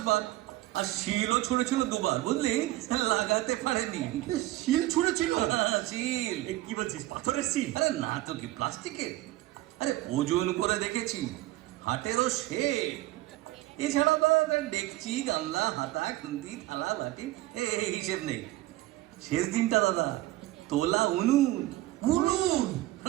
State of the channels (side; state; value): left; quieter; 17.0 dB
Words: বার, আর শিলও ছুঁড়েছিল 2 বার, বুঝলি, লাগাতে পারেনি। শিল ছুঁড়েছিল? শিল। এ কি বলছিস, পাথরের শিল? আরে না তো কি, প্লাস্টিকের। আরে ওজন করে দেখেছি, হাটেরও শেপ। এছাড়া তো ডেকচি, গামলা, হাতা, খুন্তি, থালা, বাটি এই হিসেব নেই। শেষ দিনটা দাদা, তোলা উনুন। উনুন?